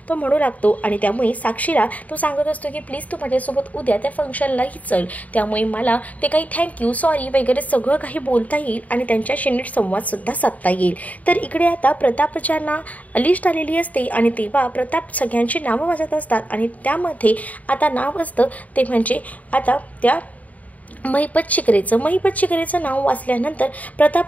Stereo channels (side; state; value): right; late; 0.072 ms